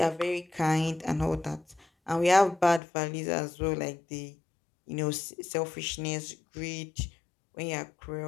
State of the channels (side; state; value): right; drops out; at 2.8 s